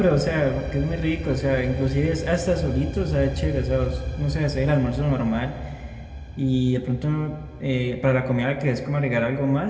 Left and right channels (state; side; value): identical; both; correlation 1.00